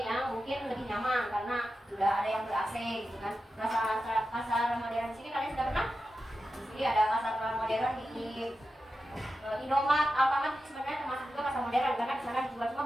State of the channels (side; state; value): both; normal; correlation 0.91